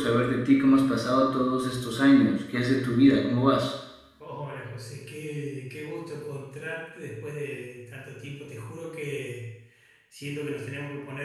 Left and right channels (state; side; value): identical; both; correlation 1.00